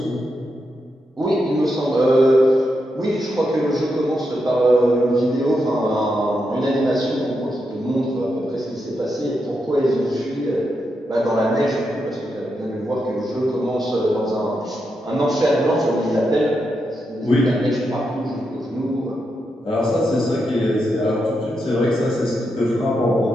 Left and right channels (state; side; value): normal; both; correlation 0.84